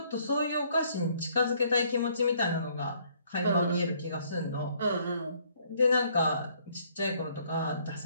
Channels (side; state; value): both; inverted; correlation -0.65